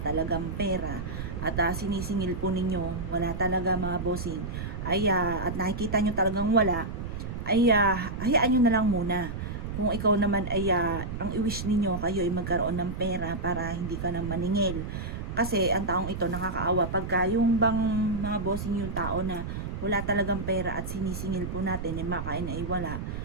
pera at sinisingil po ninyo, wala talaga mga bossing, at nakikita nyo talagang wala, hayaan nyo na lang muna. Kung ikaw naman ang i-wish ninyo kayo ay magkaroon ng pera para hindi ka na maningil. Kasi ang taong ito nakakaawa pagka yung bang mga bossing yung tao na wala talagang pera at sinisingil po natin makain ay wala.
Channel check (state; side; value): noise; right; rumble, 6 dB below the sound